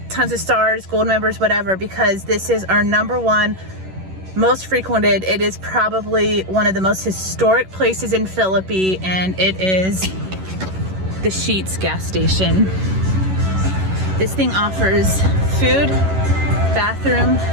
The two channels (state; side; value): late; left; 11 ms